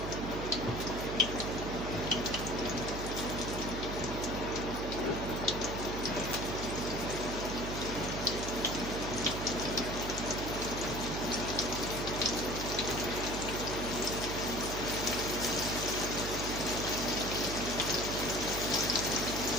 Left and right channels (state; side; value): noise; right; hum, 5 dB below the sound